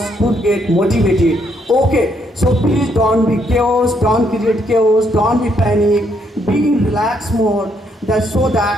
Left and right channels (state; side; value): normal; both; correlation 0.73